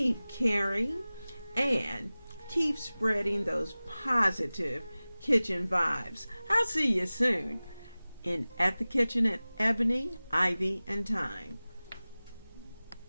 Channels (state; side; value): inverted; both; correlation -0.98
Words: caring, and keep spreading those positive kitchen vibes. I'll see you soon at the kitchen at Ebony, Ivy, and Thyme.